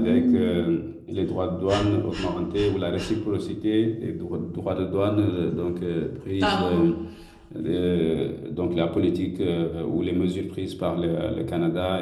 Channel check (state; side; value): identical; both; correlation 1.00